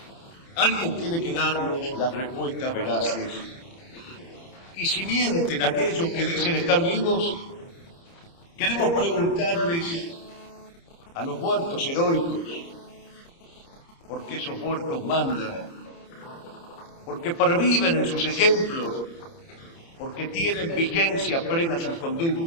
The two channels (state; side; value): late; right; 30 ms